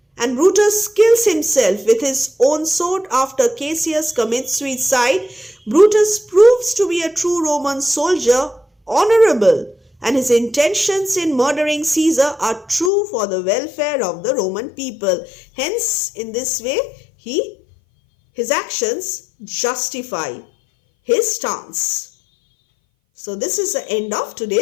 And Brutus kills himself with his own sword after Cassius commits suicide. Brutus proves to be a true Roman soldier, honorable, and his intentions in murdering Caesar are true for the welfare of the Roman people. Hence, in this way, his actions justify his stance. So this is the end of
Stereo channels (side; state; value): right; drops out; at 12.9 s